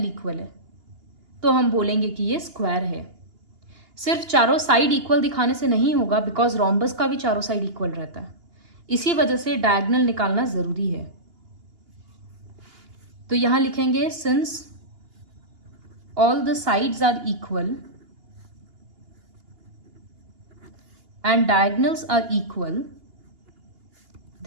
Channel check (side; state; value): left; late; 2.8 ms